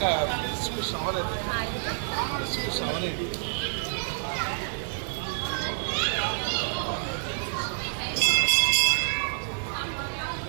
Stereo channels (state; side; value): silent; left; 59 dB below the other